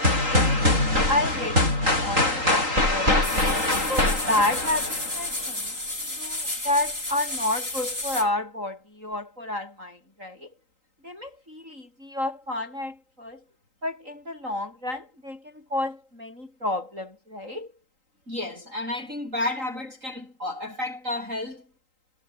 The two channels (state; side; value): late; left; 3.8 ms